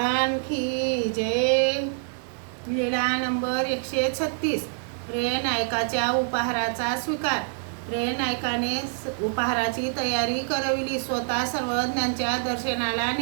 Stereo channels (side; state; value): left; silent; digital silence